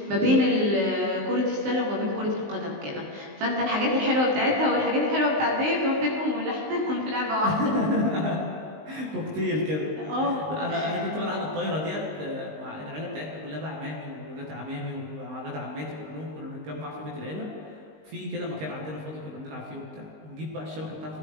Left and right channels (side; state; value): left; late; 19 ms